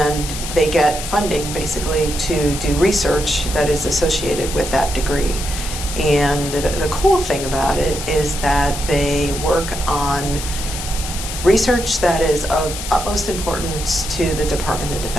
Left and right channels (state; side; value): noise; left; hiss, 7 dB below the sound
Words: they get funding basically to do research that is associated with that degree. And the cool thing about it is that they work on research that is of utmost importance to the Department of